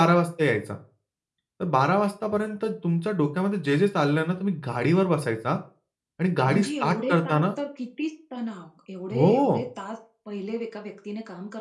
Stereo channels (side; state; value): both; identical; correlation 1.00